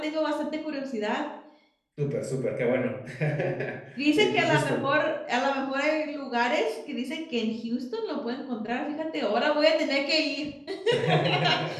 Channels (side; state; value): both; identical; correlation 1.00